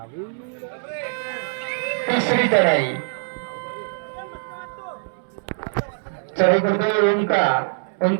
तिसरी चढाई. चढाई करतोय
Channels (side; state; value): left; silent; 63 dB below the other